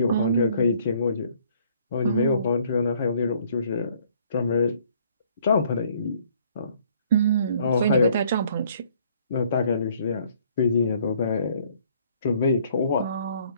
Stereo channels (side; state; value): both; inverted; correlation -0.61